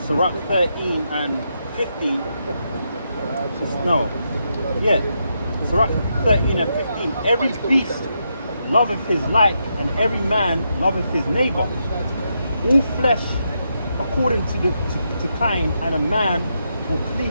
Sirach 13 and 15. No. Yeah. Sirach 13 and 15. Every beast loveth his like, and every man loveth his neighbor. All flesh according to kind, and a man will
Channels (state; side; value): inverted; both; correlation -0.82